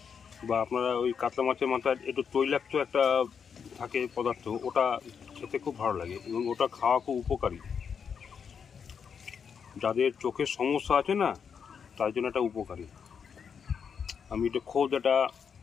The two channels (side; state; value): right; quieter; 6.7 dB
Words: বা আপনারা ওই কাতলা মাছের মাথায় একটু তৈলাক্ত একটা থাকে পদার্থ, ওটা খেতে খুব ভালো লাগে এবং ওটা খাওয়া খুব উপকারী। যাদের চোখের সমস্যা আছে না, তার জন্য এটা উপকারী। আমি এটা খোদ এটা